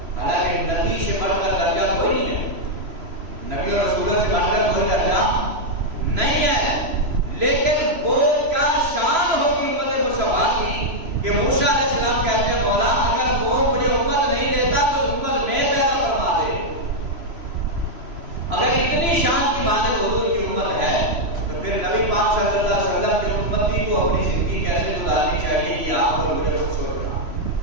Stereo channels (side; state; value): left; late; 3.0 ms